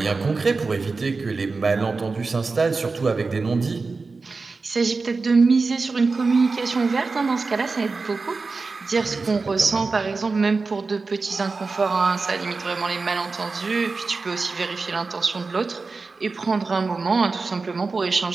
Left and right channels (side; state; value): left; quieter; 4.1 dB